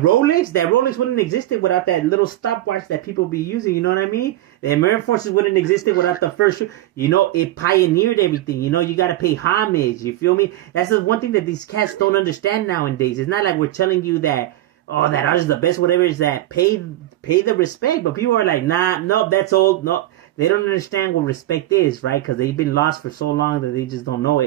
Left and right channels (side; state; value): left; quieter; 15.0 dB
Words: Rolex wouldn't existed without that little stopwatch that people be using, you know what I mean? The American Forces wouldn't existed without the first, you know, it pioneered everything, you know, you gotta pay homage, you feel me? That's the one thing that these cats don't understand nowadays. It's not like we're telling you that, oh, that artist is the best, whatever, is that pay the respect, but people are like, nah, nope, that's old, no. They don't understand what respect is, right? Because they've been lost for so long that they just don't know